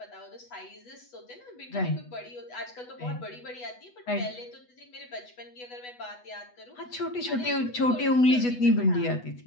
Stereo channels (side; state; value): right; late; 8.1 ms